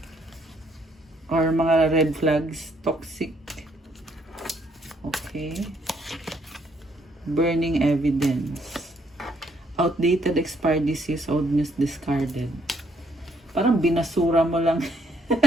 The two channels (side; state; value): both; normal; correlation 0.70